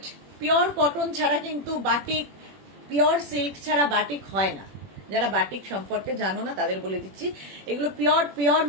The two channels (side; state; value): left; late; 21 ms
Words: পিওর কটন ছাড়া কিন্তু বাটিক, পিওর সিল্ক ছাড়া বাটিক হয় না। যারা বাটিক সম্পর্কে জানো না তাদের বলে দিচ্ছি, এগুলো পিওর